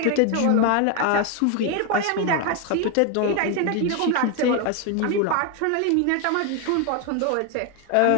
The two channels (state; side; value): different; both; correlation 0.01